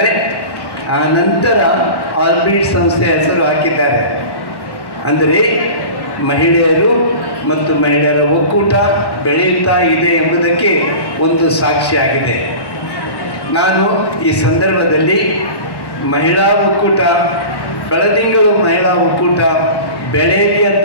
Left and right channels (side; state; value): right; late; 1.1 ms